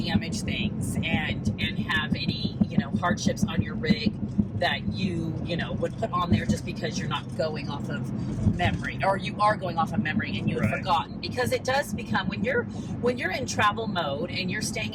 things and have any, hardships on your rig that you would put on there just because you're not going off of memory, or you are going off of memory and you've forgotten. Because it does become, when you're in travel mode and you're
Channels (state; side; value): identical; both; correlation 1.00